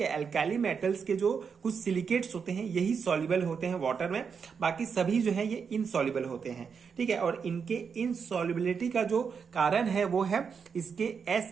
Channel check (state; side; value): quieter; left; 6.2 dB